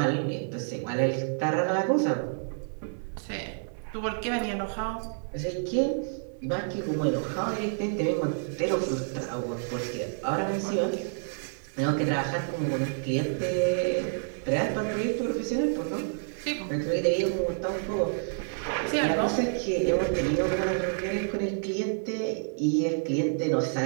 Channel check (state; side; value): silent; left; 59 dB below the other